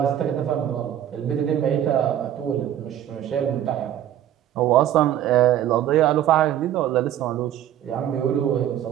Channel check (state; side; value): quieter; left; 11.3 dB